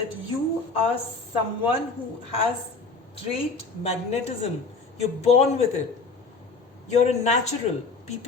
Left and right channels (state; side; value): quieter; right; 4.0 dB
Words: you are someone who has great magnetism. You're born with it. You're a natural.